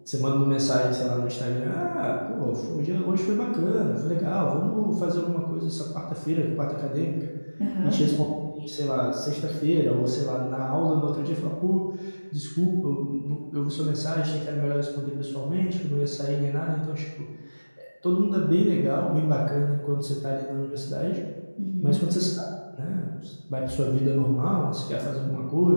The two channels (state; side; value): inverted; both; correlation -1.00